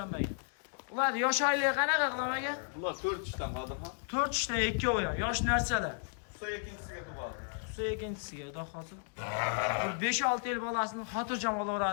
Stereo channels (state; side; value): silent; right; 55 dB below the other